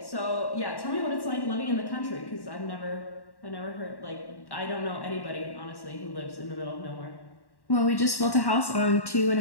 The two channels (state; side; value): late; right; 1.1 ms